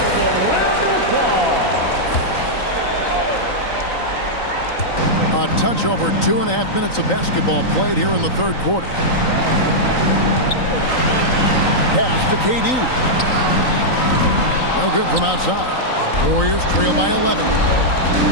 A touch over 2.5 minutes of basketball played here in the third quarter. Pass to KD. No good from outside. Warriors trail by 11.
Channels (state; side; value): late; right; 3.9 ms